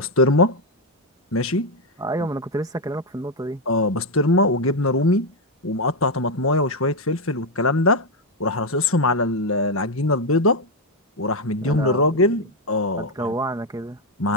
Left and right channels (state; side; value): normal; both; correlation 0.04